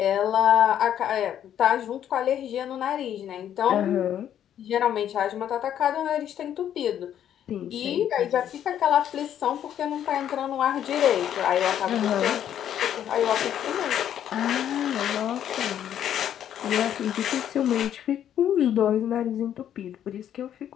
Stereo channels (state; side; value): quieter; right; 10.2 dB